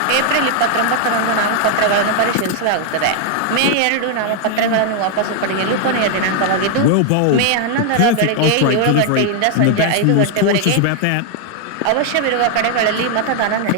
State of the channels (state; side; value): different; both; correlation 0.00